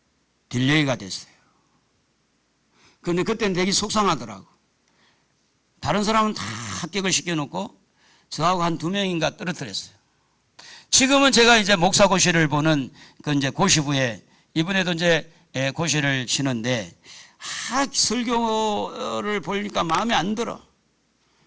딜레이가 됐어요. 그런데 그때는 되게 속상하더라고. 다른 사람은 다 합격을 시켜놓고 저하고 한 2명인가 떨어뜨렸어요. 지금은 제가 이제 목사고시를 보는 그 이제 고시부에 이번에도 이제 고시를 치는데 설교를 보니까 마음에 안 들어.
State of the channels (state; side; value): identical; both; correlation 1.00